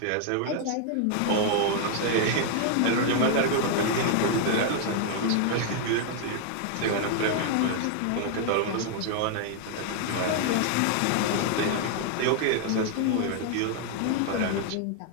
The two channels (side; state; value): both; different; correlation 0.00